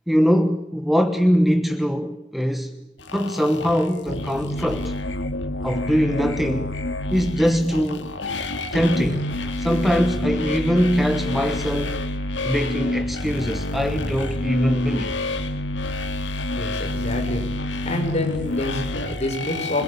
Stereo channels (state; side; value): normal; both; correlation 0.82